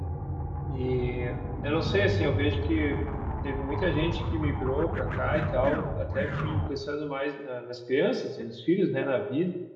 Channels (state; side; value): identical; both; correlation 1.00